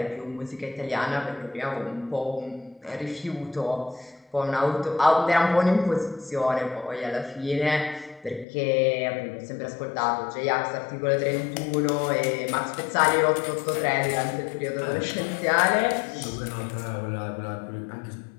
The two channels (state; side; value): drops out; right; at 8.5 s